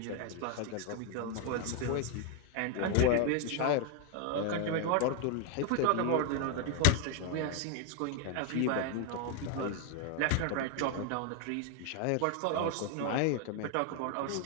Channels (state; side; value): different; both; correlation 0.01